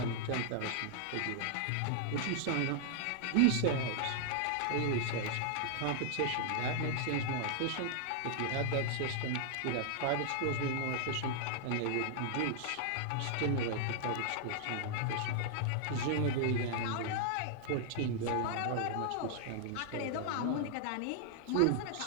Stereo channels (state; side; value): different; both; correlation -0.01